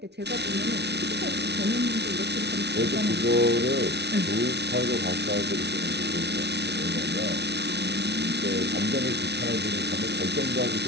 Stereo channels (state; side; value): late; left; 0.49 ms